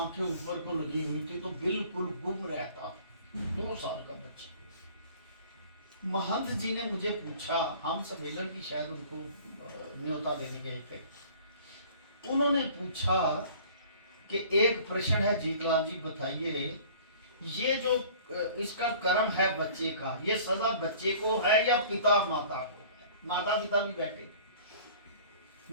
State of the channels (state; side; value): inverted; both; correlation -0.49